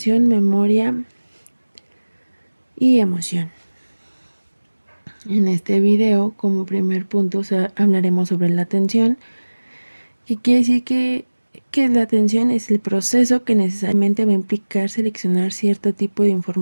memoria y emoción. En este video, como primer punto, hablaremos sobre la atención, que quiere decir que la atención es el proceso que necesariamente va a implicar seleccionar cierto tipo de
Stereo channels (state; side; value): inverted; both; correlation -1.00